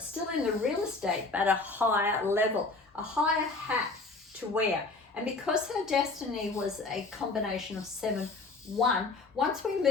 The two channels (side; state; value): right; quieter; 3.7 dB